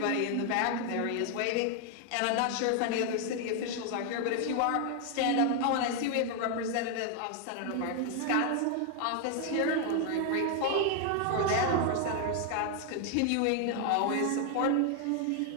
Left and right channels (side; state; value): both; different; correlation 0.00